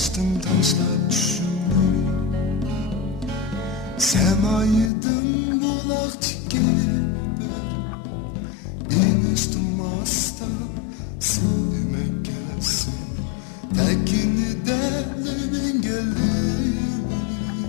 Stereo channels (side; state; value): right; drops out; at 4.9 s